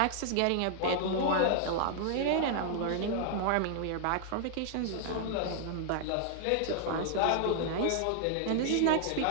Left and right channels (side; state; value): both; different; correlation 0.00